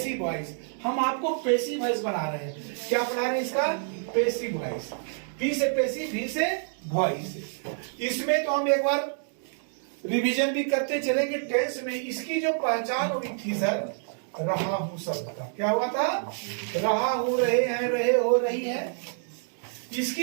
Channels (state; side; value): silent; left; digital silence